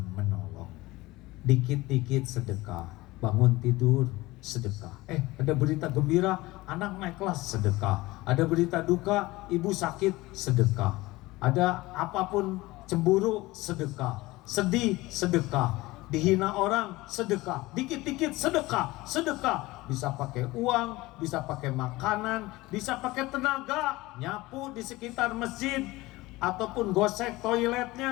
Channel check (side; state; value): right; quieter; 20.0 dB